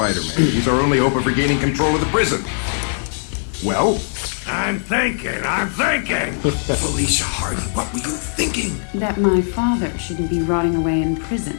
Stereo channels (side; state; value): right; silent; 66 dB below the other